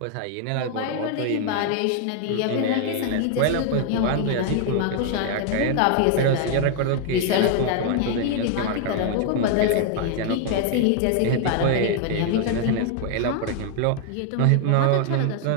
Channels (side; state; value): both; different; correlation 0.00